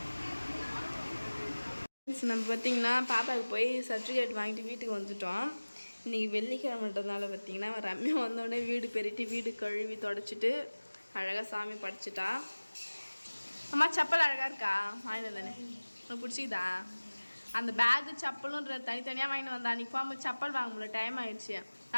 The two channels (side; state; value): both; inverted; correlation -1.00